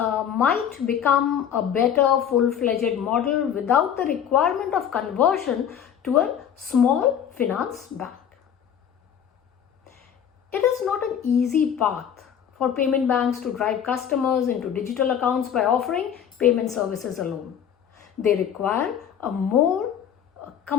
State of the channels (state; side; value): quieter; right; 8.8 dB